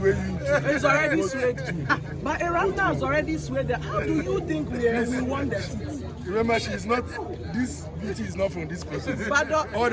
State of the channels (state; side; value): identical; both; correlation 1.00